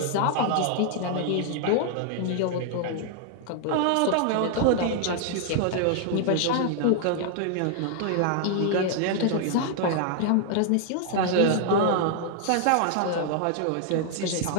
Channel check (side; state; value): both; different; correlation 0.00